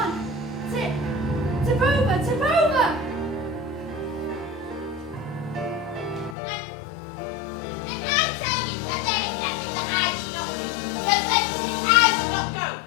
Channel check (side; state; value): right; drops out; at 6.4 s